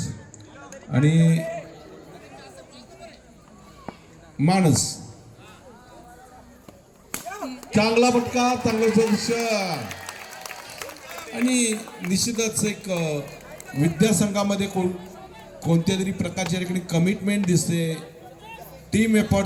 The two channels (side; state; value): both; identical; correlation 1.00